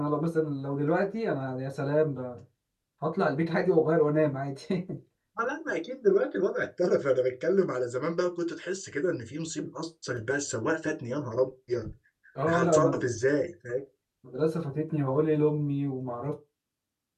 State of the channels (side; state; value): both; identical; correlation 1.00